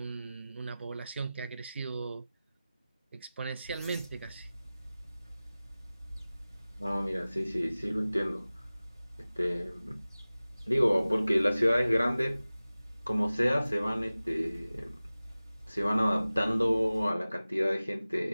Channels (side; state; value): both; inverted; correlation -0.97